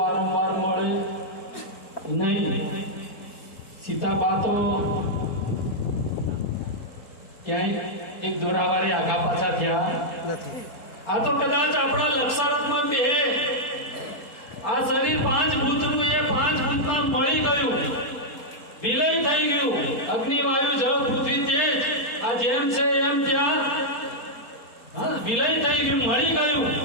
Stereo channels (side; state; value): right; late; 4.3 ms